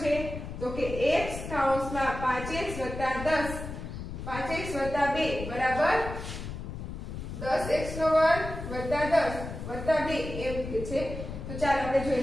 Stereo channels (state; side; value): noise; left; rumble, 8 dB below the sound